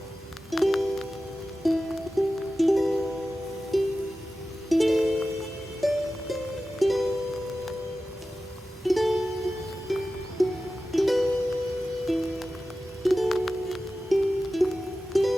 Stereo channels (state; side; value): normal; both; correlation 0.94